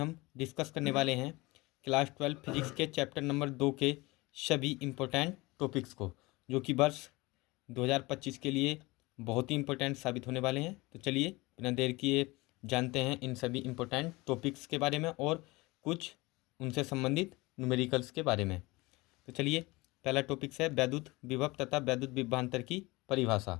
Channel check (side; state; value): right; quieter; 22.6 dB